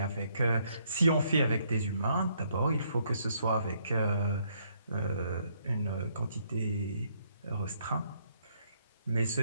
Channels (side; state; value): both; inverted; correlation -0.71